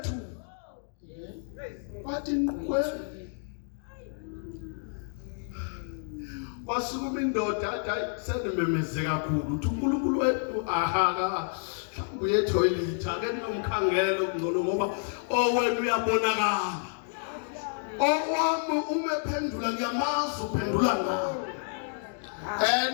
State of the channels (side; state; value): right; silent; 58 dB below the other